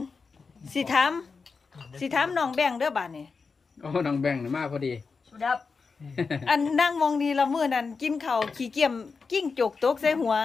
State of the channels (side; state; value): right; quieter; 4.8 dB